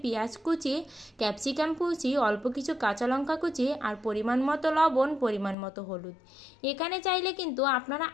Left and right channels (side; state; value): right; drops out; at 5.6 s